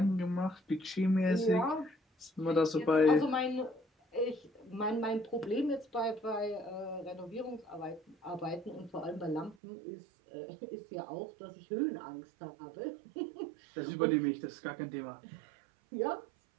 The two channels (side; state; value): left; drops out; at 9.6 s